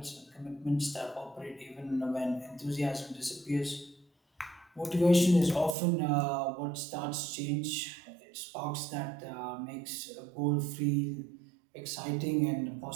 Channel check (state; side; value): drops out; left; at 5.8 s